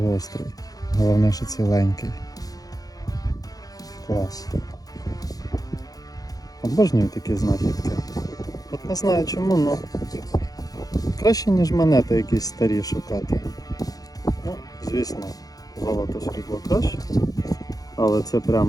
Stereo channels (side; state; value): right; late; 0.18 ms